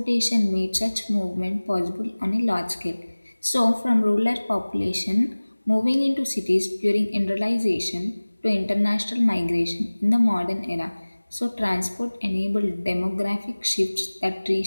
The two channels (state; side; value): inverted; both; correlation -1.00